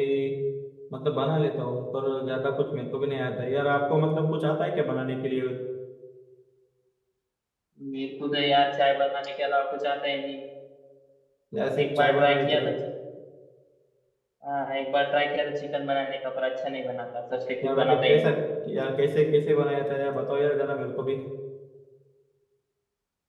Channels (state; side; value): identical; both; correlation 1.00